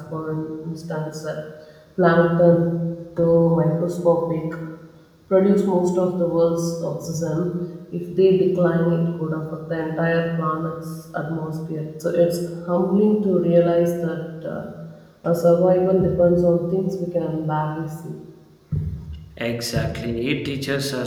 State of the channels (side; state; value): both; identical; correlation 1.00